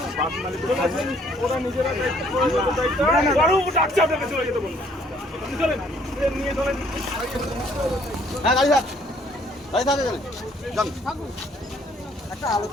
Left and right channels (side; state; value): both; normal; correlation 0.63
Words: বাস মালিকের কাছে ওরা নিজেরা দায়িত্ব ডাকছে আপনাকে চলে যেতে বলুন। আপনি চলেন, নিয়ে চলেন। হ্যাঁ গাড়ি থাক, গাড়ি থাকে গেলে যান।